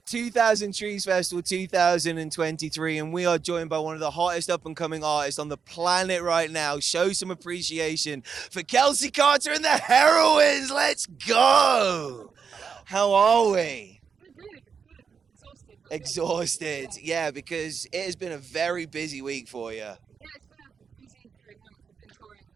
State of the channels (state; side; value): quieter; left; 6.2 dB